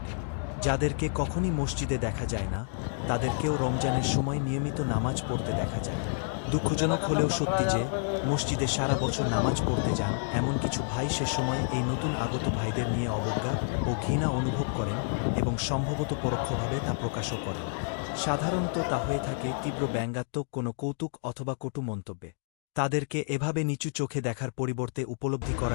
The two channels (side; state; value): right; silent; digital silence